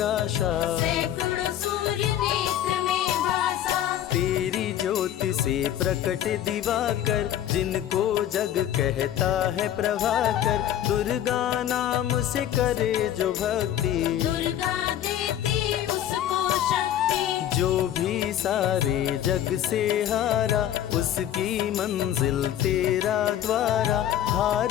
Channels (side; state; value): right; quieter; 11.3 dB